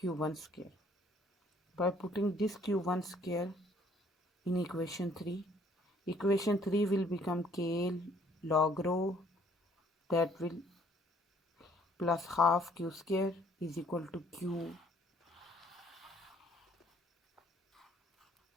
square. By putting this Q1 square in equation 3, equation 3 will become K log rho, that will plus half q square is equal to Q1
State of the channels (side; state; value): both; normal; correlation 0.61